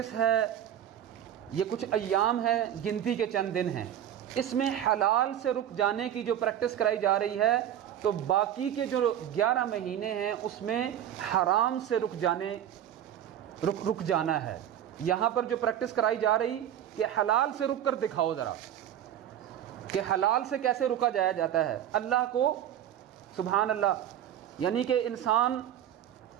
ہے، یہ کچھ ایام ہے، گنتی کے چند دن ہیں، اس میں حلال سے رک جانے کی جو پریکٹس کرائی جا رہی ہے، تو باقی کے جو 11 مہینے ہیں اس میں حرام سے رک جانا ہے۔ یہاں پر جو پریکٹس کرائی جا رہی کہ حلال سے رک کر دکھاؤ ذرا کہ حلال سے کیسے رکا جاتا ہے اللہ کو، سبحان اللہ، یعنی کہ انسان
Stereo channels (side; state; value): left; quieter; 10.7 dB